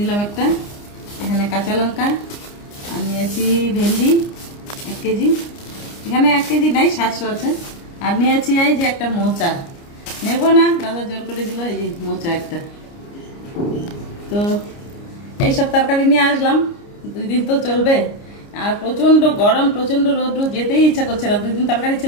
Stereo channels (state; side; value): late; right; 29 ms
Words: একটা। এখানে কাঁচা লঙ্কা, আর নিয়েছি ভেন্ডি 1 কেজি। এখানে 1 কেজি নাই, 700 আছে। আর নিয়েছি এই যে একটা মোচা, নেবো না, দাদা জোর করে দিল। এই যে মোচা একটা। তো এইসব তরকারি নিয়ে আসলাম। 2 দিন তো চলবে। আর প্রচণ্ড গরম, প্রচণ্ড রোদ্র, যেতেই ইচ্ছা করছে না। 2 দিন তরকারি